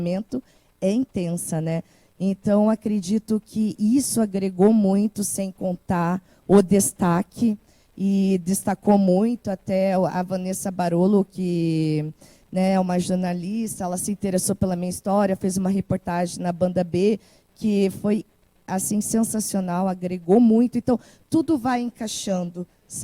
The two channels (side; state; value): both; identical; correlation 1.00